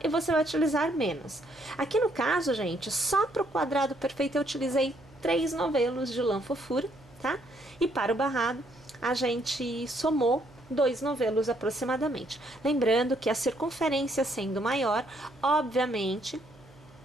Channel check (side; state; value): right; noise; hum, 25 dB below the sound